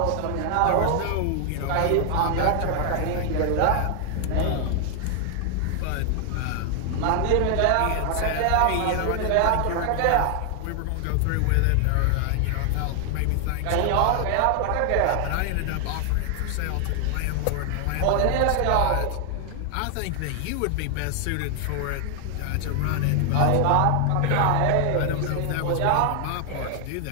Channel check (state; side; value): different; both; correlation 0.00